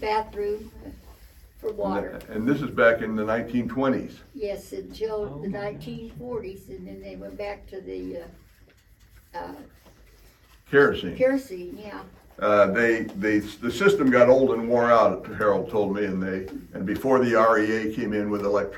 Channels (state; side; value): identical; both; correlation 1.00